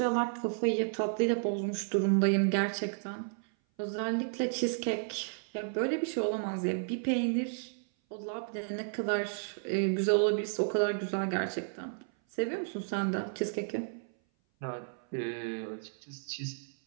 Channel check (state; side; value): silent; left; 56 dB below the other